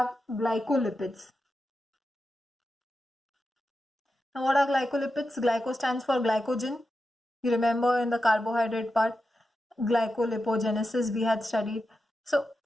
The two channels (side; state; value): both; normal; correlation 0.89